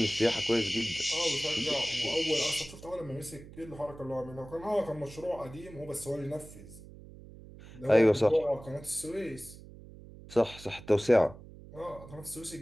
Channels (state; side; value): noise; right; hum, 17 dB below the sound